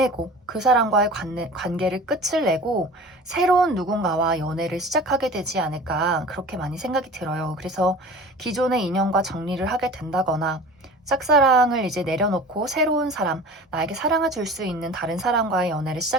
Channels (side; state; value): both; normal; correlation 0.39